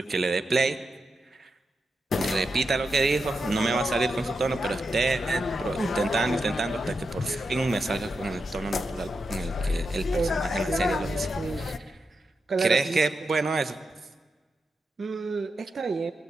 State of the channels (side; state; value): both; normal; correlation 0.87